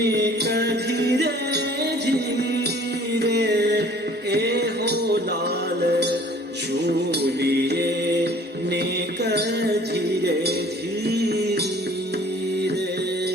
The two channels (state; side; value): normal; both; correlation 0.52